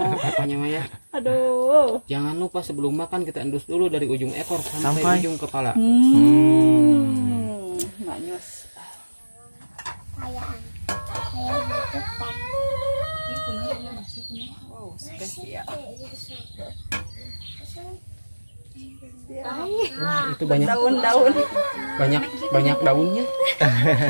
Apanya Maya? Aduh. Jangan lupa sebelum makan kita endus dulu dari ujung ekor sampai ujung kepala. Nggak nyos. Kayak butuh Wow, spesial. Wah, itu banyak Daun-daun. banyak daunnya.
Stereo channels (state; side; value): inverted; both; correlation -1.00